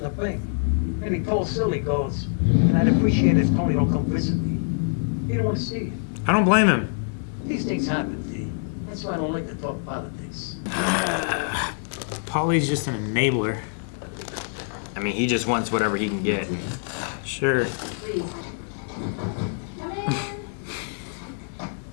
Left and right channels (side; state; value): right; silent; digital silence